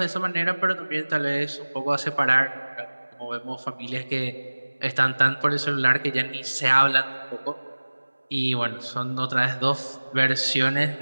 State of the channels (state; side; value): inverted; both; correlation -1.00